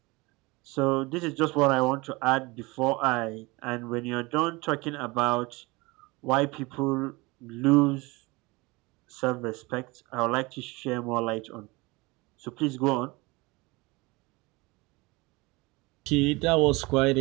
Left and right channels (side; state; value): left; quieter; 24.0 dB